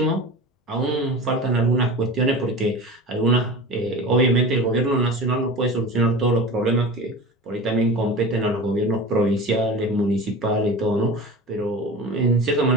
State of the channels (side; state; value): both; normal; correlation 0.33